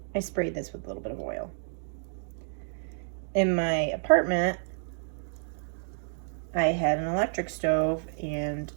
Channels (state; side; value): silent; left; digital silence